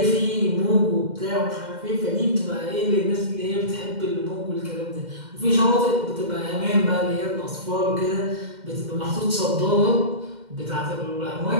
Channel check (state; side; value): late; left; 2.1 ms